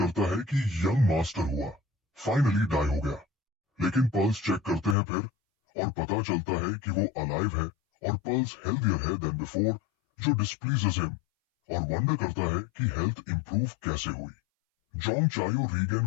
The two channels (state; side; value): drops out; right; at 5.0 s